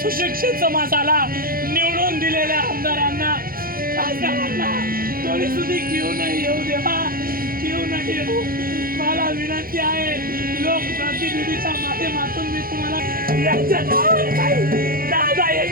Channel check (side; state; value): left; late; 0.42 ms